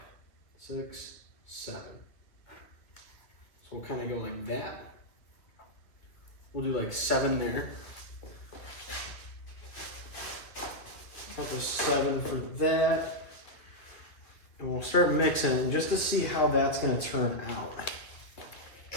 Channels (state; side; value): late; right; 2.4 ms